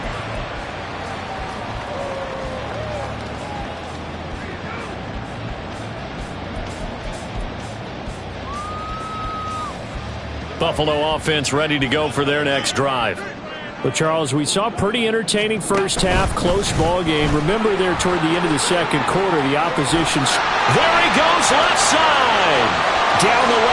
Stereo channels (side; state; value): both; identical; correlation 1.00